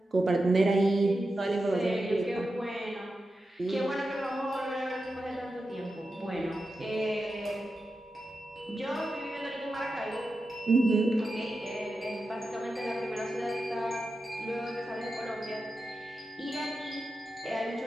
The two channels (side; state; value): both; normal; correlation 0.90